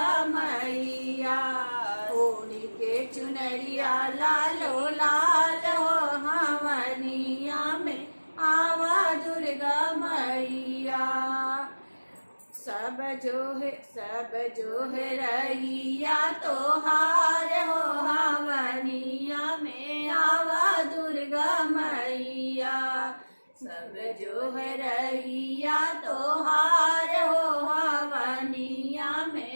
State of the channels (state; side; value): inverted; both; correlation -1.00